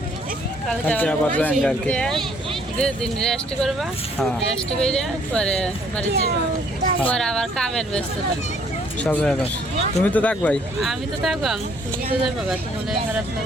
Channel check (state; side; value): normal; both; correlation 0.63